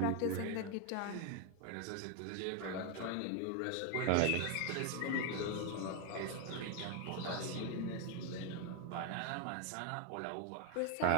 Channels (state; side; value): different; both; correlation 0.01